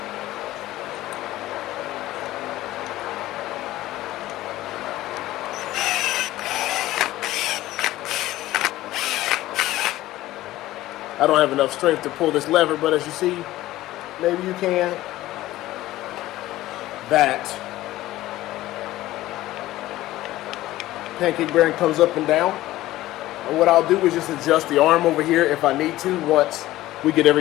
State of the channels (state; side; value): quieter; right; 15.9 dB